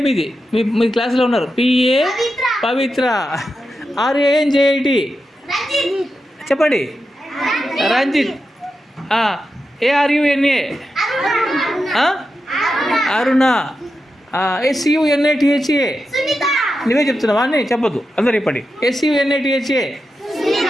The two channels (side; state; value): both; normal; correlation 0.89